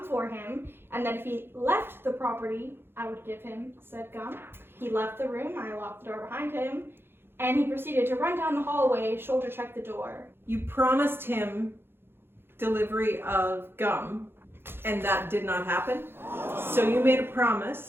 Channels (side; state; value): left; late; 0.11 ms